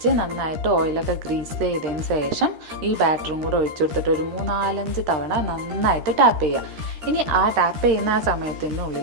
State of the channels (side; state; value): left; late; 13 ms